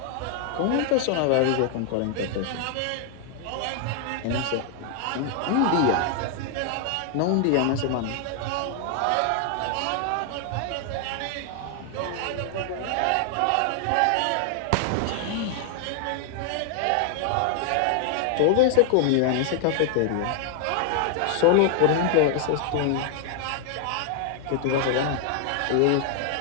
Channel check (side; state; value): both; different; correlation 0.00